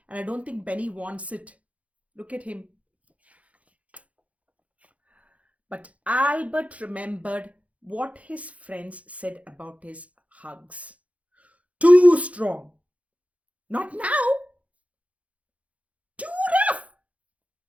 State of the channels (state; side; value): late; left; 0.066 ms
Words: And I don't think Benny wants it. Look at him. But Albert remembered what his friends said about his hugs. Too strong. Not now. Too rough.